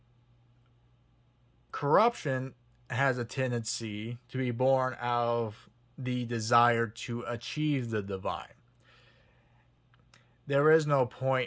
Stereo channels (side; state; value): both; identical; correlation 1.00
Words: corruption has a tendency to be born out of the desire to achieve the divine. there is no